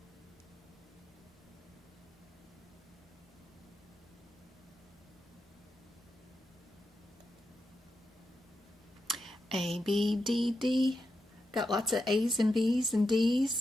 A, B, D, D. Got lots of A's and B's and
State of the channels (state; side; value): normal; both; correlation 0.87